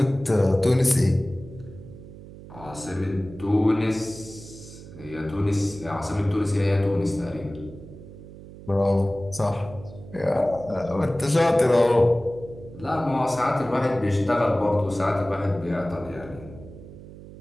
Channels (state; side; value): noise; right; hum, 16 dB below the sound